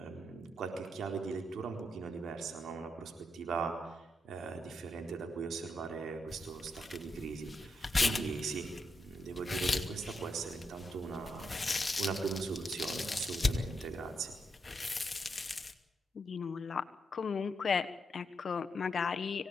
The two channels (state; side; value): normal; both; correlation 0.82